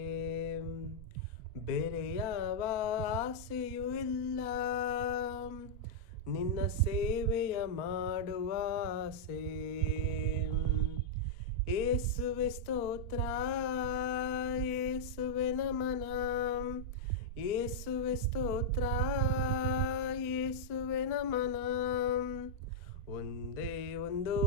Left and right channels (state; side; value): late; right; 4.4 ms